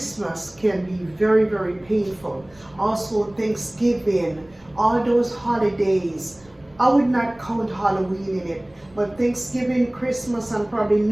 can be very, very painful. Also Thanksgiving, all those holidays. I would not count Halloween in it, but Thanksgiving, Christmas, and probably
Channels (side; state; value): right; noise; rumble, 29 dB below the sound